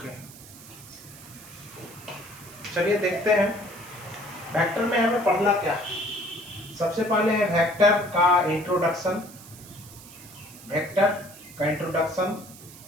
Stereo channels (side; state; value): right; noise; hiss, 18 dB below the sound